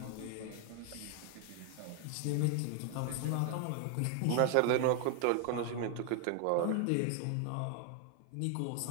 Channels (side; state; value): both; different; correlation 0.00